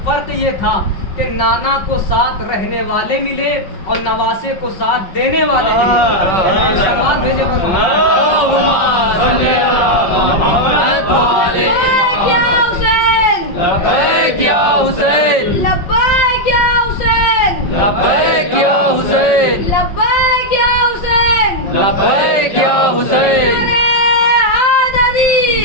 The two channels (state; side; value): late; right; 5.4 ms